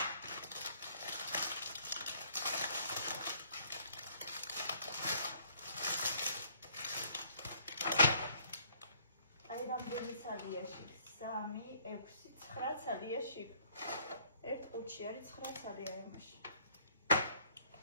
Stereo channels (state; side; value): inverted; both; correlation -0.62